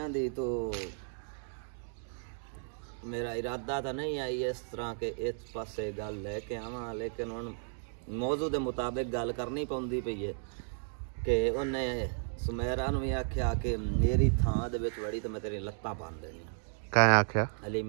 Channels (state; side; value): silent; left; digital silence